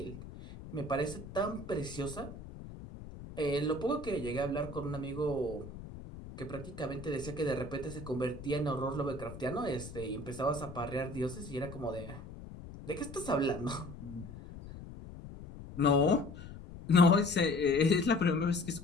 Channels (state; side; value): noise; left; rumble, 13 dB below the sound